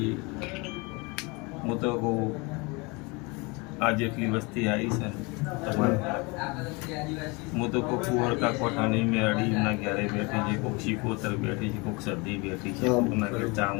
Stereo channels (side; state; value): right; quieter; 27.5 dB